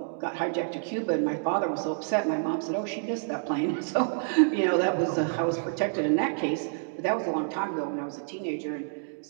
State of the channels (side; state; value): left; silent; digital silence